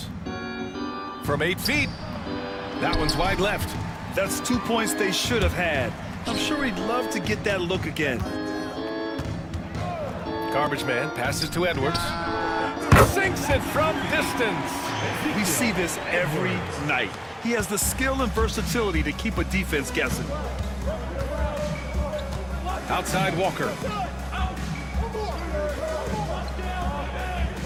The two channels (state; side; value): identical; both; correlation 1.00